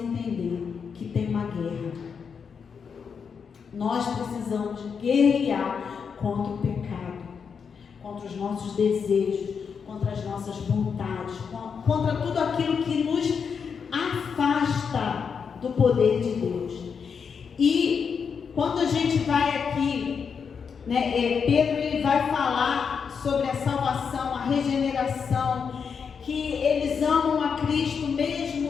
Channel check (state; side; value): quieter; right; 6.3 dB